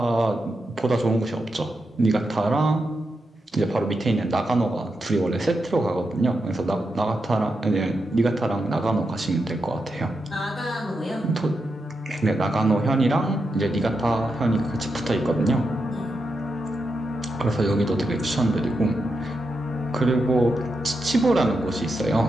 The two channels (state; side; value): normal; both; correlation 0.86